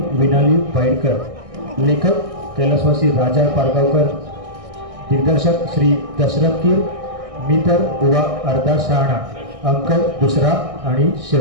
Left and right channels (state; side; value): late; left; 1.6 ms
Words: विनाली भाईडकर, लेखक कैलासवासी राजा पारगावकर, दिग्दर्शक श्री दशरथ कीर, मी तर बुवा अर्धा शहाणा, अंक दुसरा आणि